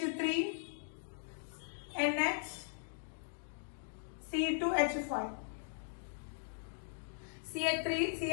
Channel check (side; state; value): right; silent; digital silence